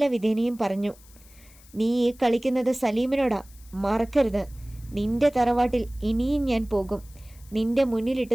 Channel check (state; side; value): noise; left; hiss, 25 dB below the sound